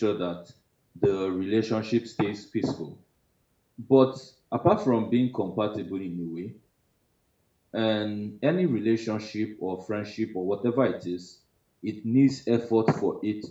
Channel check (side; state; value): both; identical; correlation 1.00